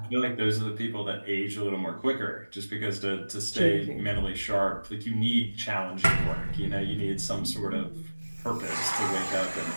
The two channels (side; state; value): both; inverted; correlation -1.00